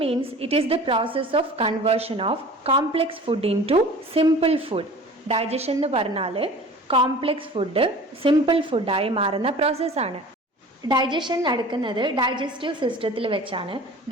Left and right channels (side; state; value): both; normal; correlation 0.42